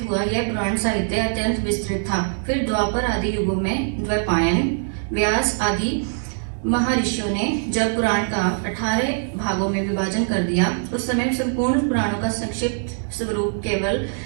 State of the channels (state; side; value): silent; left; digital silence